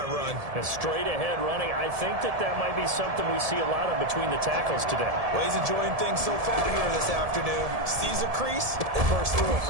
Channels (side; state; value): left; late; 1.7 ms